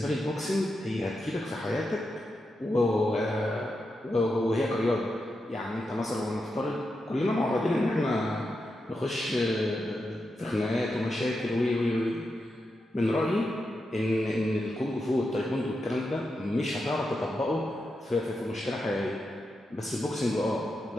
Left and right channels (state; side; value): normal; both; correlation 0.87